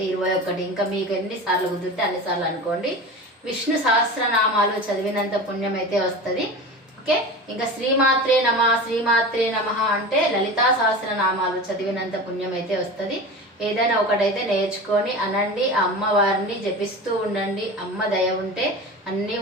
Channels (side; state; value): both; normal; correlation 0.31